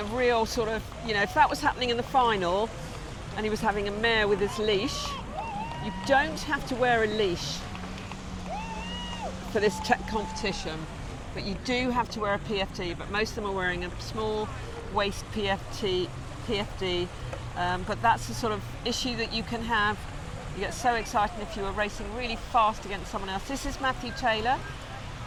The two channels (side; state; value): both; identical; correlation 1.00